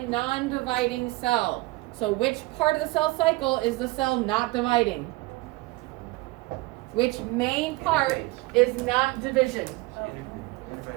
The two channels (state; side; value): quieter; left; 21.5 dB